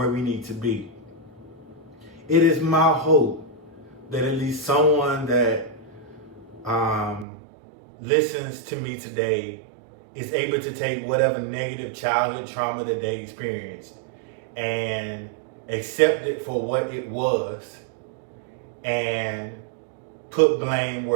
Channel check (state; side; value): drops out; left; at 7.2 s